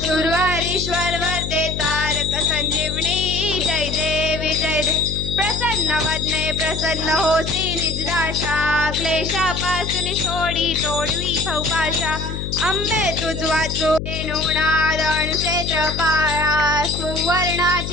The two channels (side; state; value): left; noise; hum, 5 dB below the sound